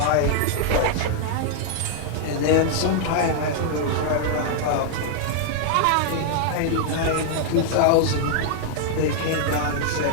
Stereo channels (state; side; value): different; both; correlation -0.01